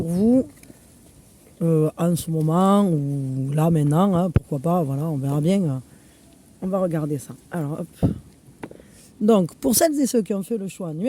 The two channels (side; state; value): both; identical; correlation 1.00